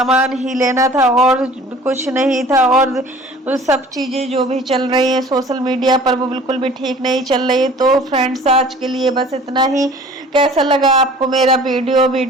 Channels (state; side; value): normal; both; correlation 0.48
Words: ही लेना था और कुछ नहीं था। और सब चीजें जो भी चल रही है सोशल मीडिया पर वो बिल्कुल भी ठीक नहीं चल रही है। तो फ्रेंड्स आज के लिए बस इतना ही। कैसा लगा आपको मेरा